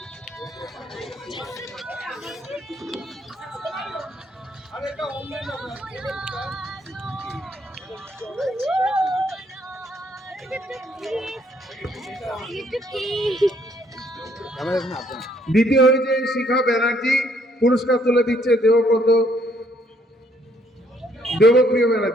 দ্বিতীয় হয়েছে শিখা ব্যানার্জি, পুরস্কার তুলে দিচ্ছে দেবপ্রিয়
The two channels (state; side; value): normal; both; correlation 0.67